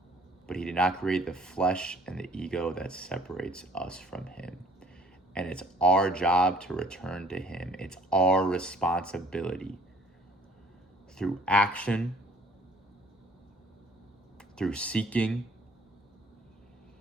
But he did not create the flesh and the ego that separates us from him. And it's our job to return to him. It's our responsibility. Through action, through seeking,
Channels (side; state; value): both; normal; correlation 0.56